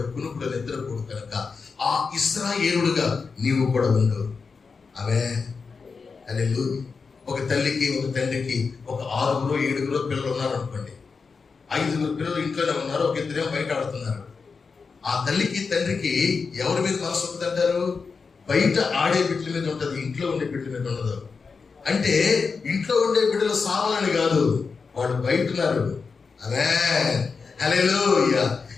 కునుకుడు నిద్రపోడు కనుక ఆ ఇశ్రాయేలుడుగా నీవు కూడా ఉండు. హల్లెలూయా. ఒక తల్లికి, ఒక తండ్రికి ఒక 6 7 పిల్లలు ఉన్నారు అనుకోండి. 5 పిల్లలు ఇంట్లోనే ఉన్నారు, ఒక 2 బయట ఆడుతున్నారు. ఆ తల్లికి తండ్రికి ఎవరి మీద మనసు ఉంటుందంటారు? బయట ఆడే బిడ్డల మీద ఉంటుంది, ఇంట్లో ఉండే బిడ్డల మీద ఉండదు. అంటే ఇంట్లో ఉండే బిడ్డలు సావాలని కాదు, వాడు బయట ఉన్నారు. హల్లెలూయా.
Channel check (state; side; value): quieter; right; 5.0 dB